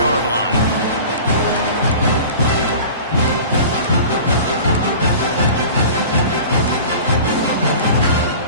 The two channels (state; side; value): inverted; both; correlation -0.40